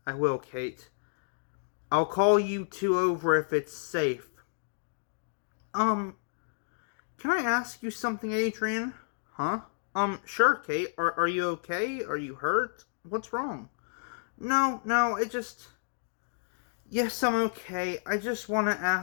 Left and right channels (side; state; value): right; silent; digital silence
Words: I will, Kate. I'll call you two over if it's safe. Can I ask you something, Adrian? Huh? Sure, Kate. Are you okay? Are you hurt? What's wrong? No, Yes, I'm okay. I just want to